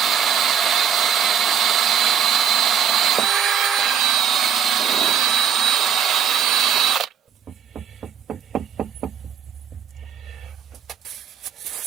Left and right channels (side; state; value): left; quieter; 8.3 dB